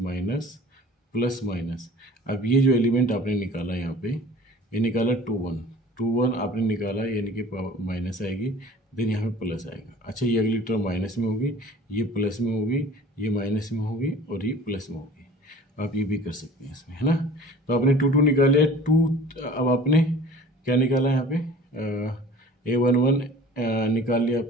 प्लस माइनस। अब ये जो एलिमेंट आपने निकाला यहाँ पे, ये निकाला 21 आपने निकाला, यानी कि माइनस आएगी, देन यहाँ पे प्लस आएगा। अच्छा, ये अगली टर्म माइनस में होगी, ये प्लस में होगी, ये माइनस में होगी, और ये प्लस में होगी। आप ये भी कर सकते हैं इसमें, है ना। तो आपने 2 निकाले 2, अब आपने क्या निकाला यहाँ पे, A11 निकाल लिया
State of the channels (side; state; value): both; normal; correlation 0.45